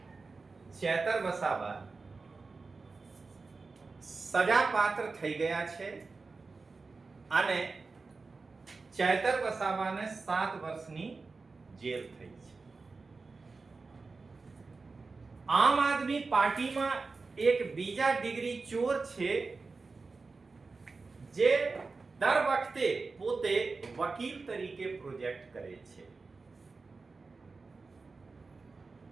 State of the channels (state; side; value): quieter; left; 4.1 dB